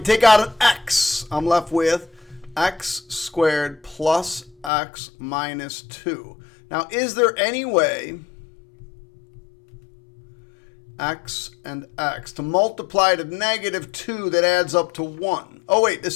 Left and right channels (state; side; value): drops out; right; at 4.7 s